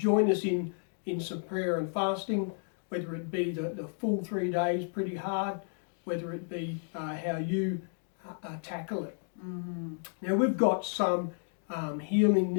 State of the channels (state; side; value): silent; right; 56 dB below the other